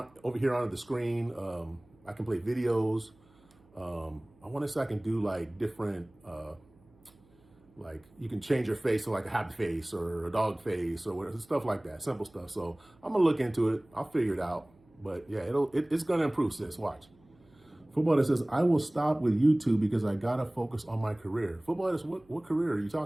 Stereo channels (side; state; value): right; noise; hum, 30 dB below the sound